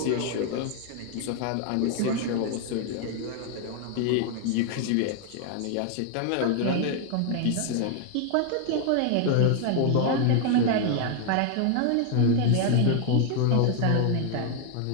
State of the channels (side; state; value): both; different; correlation 0.00